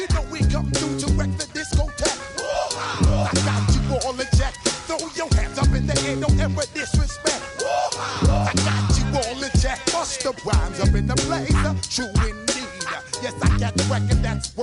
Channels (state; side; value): identical; both; correlation 1.00